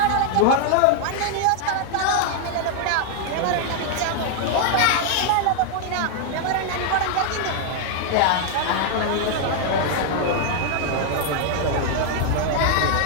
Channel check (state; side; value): different; both; correlation 0.00